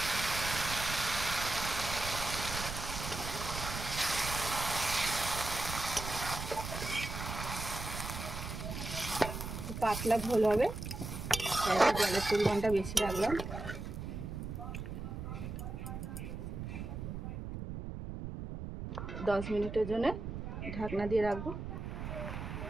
পাতলা ঝোল হবে, তাই জলের পরিমাণটা বেশি রাখলাম। 10 মিনিটের জন্য ঢাকনা দিয়ে রাখবো।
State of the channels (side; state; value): right; noise; rumble, 6 dB below the sound